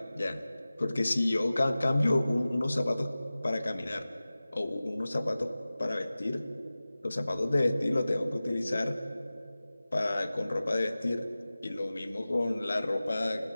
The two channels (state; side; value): inverted; both; correlation -0.97